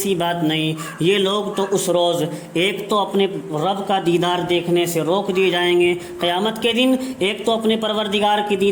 بات نہیں، یہ لوگ تو اس روز ایک تو اپنے رب کا دیدار دیکھنے سے روک دیے جائیں گے قیامت کے دن، ایک تو اپنے پروردگار کے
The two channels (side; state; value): both; identical; correlation 1.00